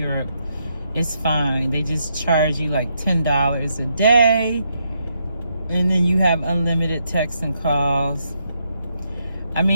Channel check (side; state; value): both; inverted; correlation -0.78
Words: is fine. They just charge you like $10 a day. And then you have unlimited texts and calls. I